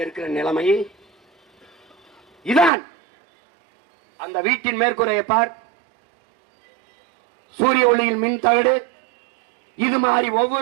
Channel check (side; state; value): left; drops out; at 2.7 s